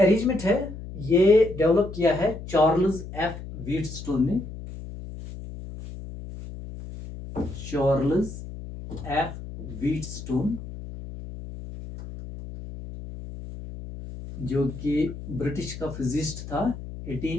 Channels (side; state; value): left; noise; hum, 11 dB below the sound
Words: है ये डेवलप किया है चार्ल्स एफ व्हीटस्टोन ने. चार्ल्स एफ व्हीटस्टोन जो कि ब्रिटिश का फिजिस्ट था,